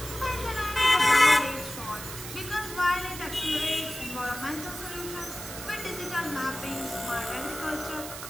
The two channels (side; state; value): right; noise; hiss, 10 dB below the sound